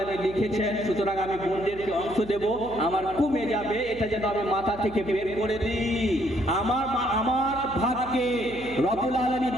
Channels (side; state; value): left; noise; hum, 17 dB below the sound